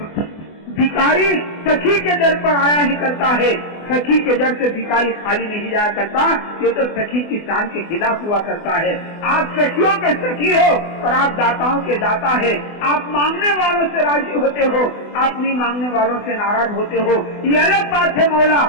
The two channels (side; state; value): right; late; 24 ms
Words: بھکاری سخی کے در پر آیا ہی کرتا ہے، سخی کے در سے بھکاری خالی نہیں جایا کرتا، یہ تو سخی کی شان کے خلاف ہوا کرتا ہے۔ آپ سخیوں کے سخی ہو اور آپ داتاؤں کے داتا ہے۔ آپ مانگنے والوں سے راضی ہوتے ہو، آپ نہیں مانگنے والوں سے ناراض ہوتے ہو، یہ الگ بات ہے مولا۔